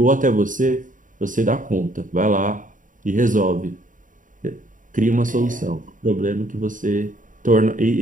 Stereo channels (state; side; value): late; left; 0.38 ms